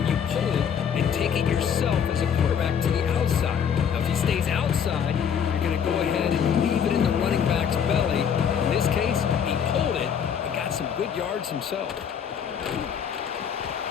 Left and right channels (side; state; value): right; quieter; 7.8 dB